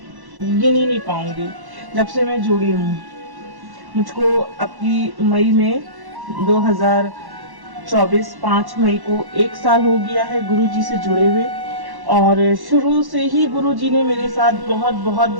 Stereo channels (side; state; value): left; late; 1.1 ms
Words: गिन ही नहीं पाऊंगी। जब से मैं जुड़ी हूँ, मुझको अपनी मई में 2024 5 मई को 1 साल हो गया है गुरु जी से जुड़े हुए। और शुरू से ही गुरु जी ने मेरे साथ बहुत